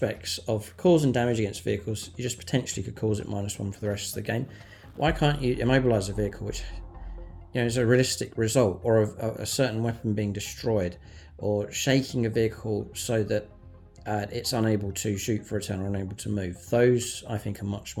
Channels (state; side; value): identical; both; correlation 1.00